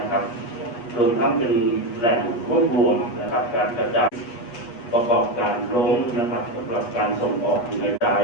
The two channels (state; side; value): late; right; 8.4 ms